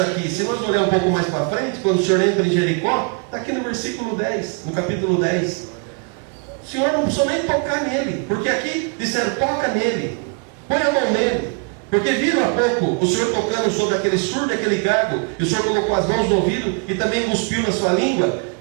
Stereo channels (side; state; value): left; quieter; 36.9 dB